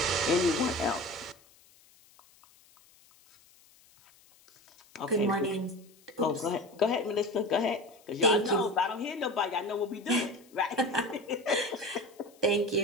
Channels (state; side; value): noise; left; hiss, 28 dB below the sound